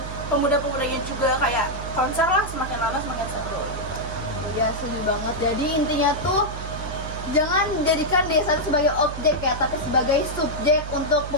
pemuda-pemudanya juga kayak konser lah, semakin lama semakin seru gitu. Ya setuju banget. Jadi intinya tuh jangan jadikan desa itu sebagai objek ya, tapi sebagai subjek untuk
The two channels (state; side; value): noise; right; hum, 8 dB below the sound